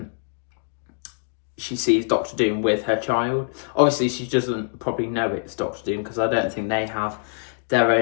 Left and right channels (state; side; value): silent; right; 63 dB below the other